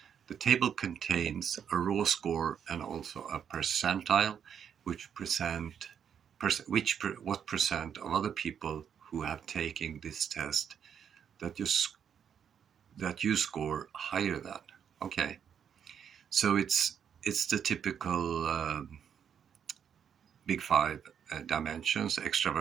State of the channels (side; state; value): left; quieter; 8.1 dB